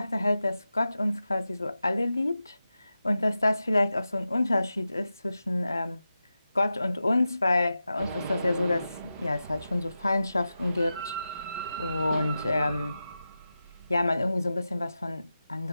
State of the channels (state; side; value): inverted; both; correlation -0.92